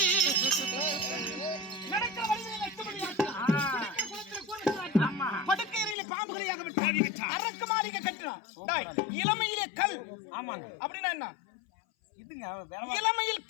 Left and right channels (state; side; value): drops out; right; at 6.0 s